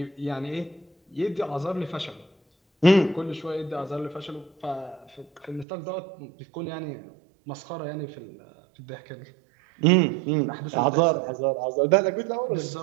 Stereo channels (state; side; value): drops out; left; at 5.7 s